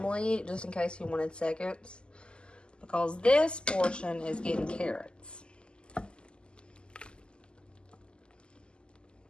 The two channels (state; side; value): late; right; 0.050 ms